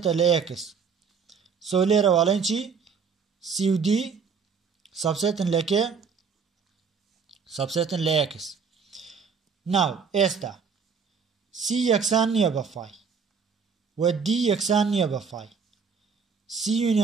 لە x سۆ لێرەوە ئەڵێن چی CUD سەبسێتن لە کێ سەبسێتن لە x ناو ئێستا C یەکسان نییە بە فای و D یەکسان نییە بە فای C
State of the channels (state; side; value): quieter; left; 5.9 dB